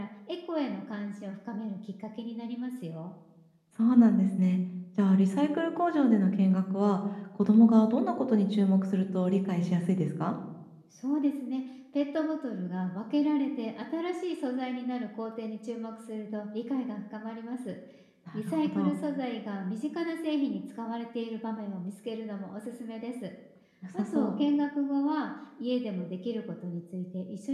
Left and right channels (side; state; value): both; identical; correlation 1.00